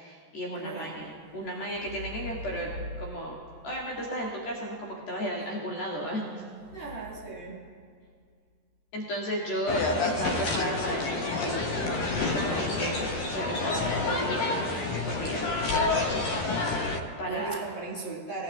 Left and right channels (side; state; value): right; late; 13 ms